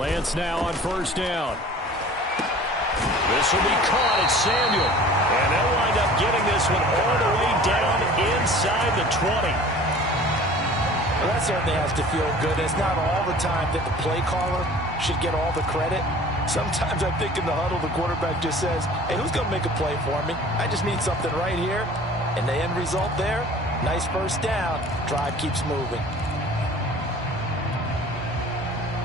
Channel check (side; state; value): both; normal; correlation 0.45